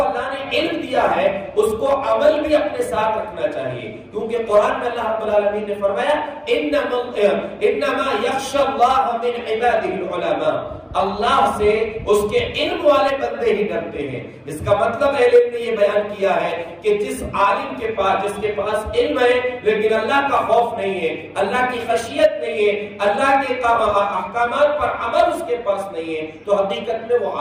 اللہ نے علم دیا ہے اس کو عمل بھی اپنے ساتھ رکھنا چاہیے، کیونکہ قرآن میں اللہ رب العالمین نے فرمایا انما یخشی اللہ من عبادہ العلماء، اللہ سے اس کے علم والے بندے ہی ڈرتے ہیں۔ اس کا مطلب علم نے یہ بیان کیا ہے کہ جس عالم کے پاس، جس کے پاس علم ہے لیکن اللہ کا خوف نہیں ہے، اللہ کی خشیت نہیں ہے، اللہ کے احکامات پر عمل اس کے پاس نہیں ہے، تو حقیقت میں وہ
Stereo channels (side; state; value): both; identical; correlation 1.00